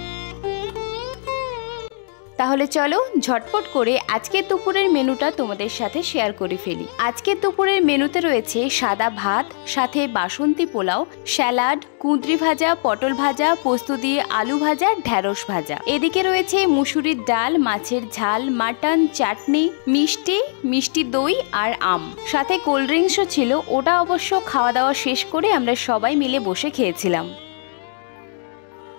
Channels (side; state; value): right; silent; digital silence